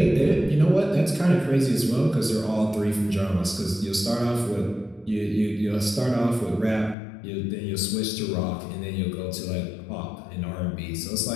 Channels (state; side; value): drops out; right; at 7.0 s